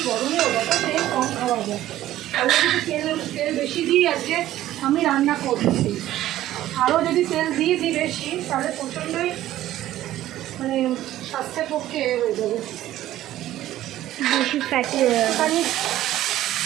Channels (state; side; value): quieter; left; 13.9 dB